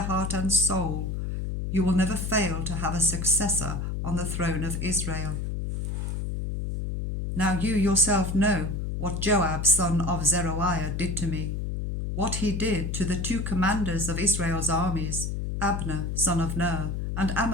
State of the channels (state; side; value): noise; left; hum, 3 dB below the sound